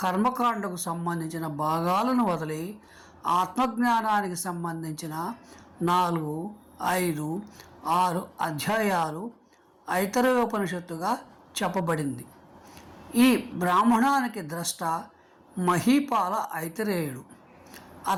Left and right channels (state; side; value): identical; both; correlation 1.00